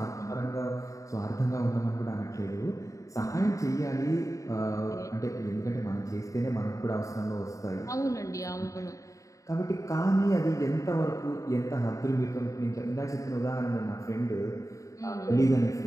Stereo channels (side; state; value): right; late; 0.16 ms